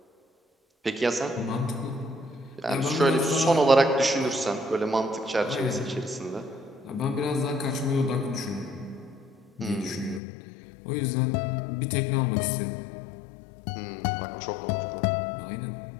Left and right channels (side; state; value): right; drops out; at 10.2 s